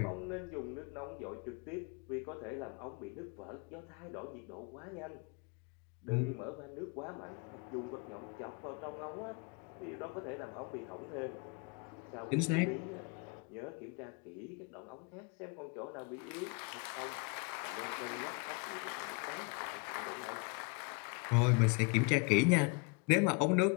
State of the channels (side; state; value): right; quieter; 29.4 dB